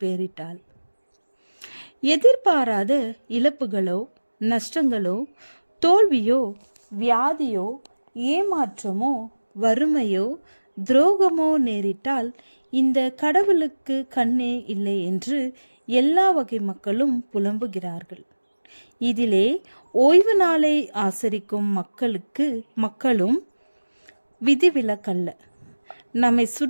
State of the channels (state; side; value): inverted; both; correlation -1.00